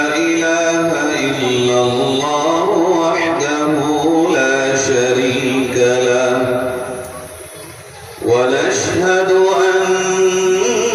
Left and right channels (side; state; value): both; identical; correlation 1.00